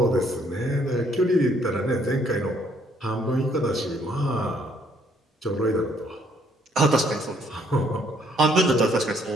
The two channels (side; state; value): both; normal; correlation 0.66